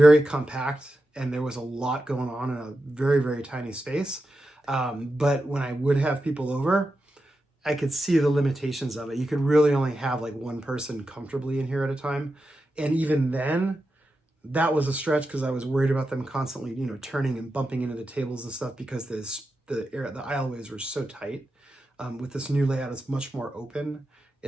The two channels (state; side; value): normal; both; correlation 0.89